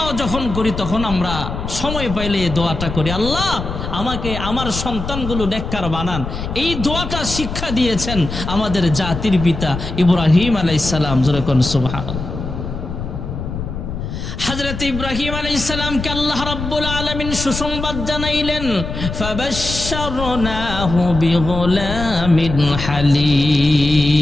যখন করি তখন আমরা সময় পাইলে এই দোয়াটা করি, আল্লাহ আমাকে আমার সন্তানগুলো নেককার বানান। এই দোয়াটা শিক্ষা দিয়েছেন আমাদের জাতির পিতা ইব্রাহিম আলাইহিস সালাম। জোরে কোন সুবহানাল্লাহ। হযরত ইব্রাহিম আলাইহিস সালামকে আল্লাহ রাব্বুল আলামিন সুসংবাদ জানাইলেন, ফাবাশশারনাহু বিগুলামিন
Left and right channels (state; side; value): noise; left; rumble, 6 dB below the sound